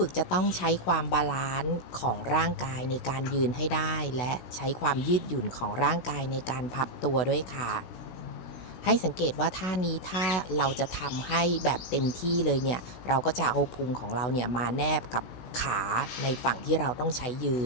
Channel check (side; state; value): right; late; 16 ms